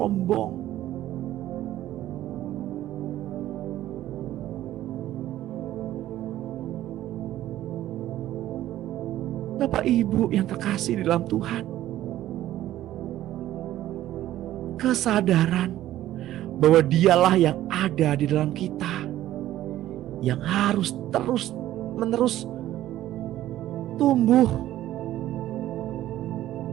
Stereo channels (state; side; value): quieter; left; 13.7 dB